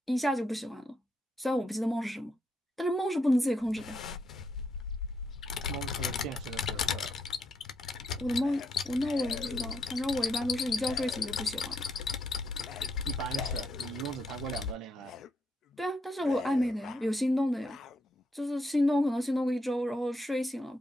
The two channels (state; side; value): normal; both; correlation 0.78